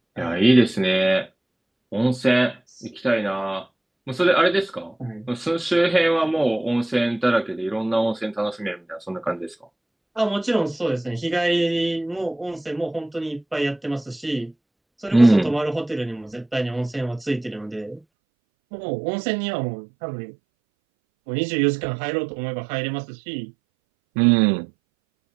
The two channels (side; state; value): left; drops out; at 18.0 s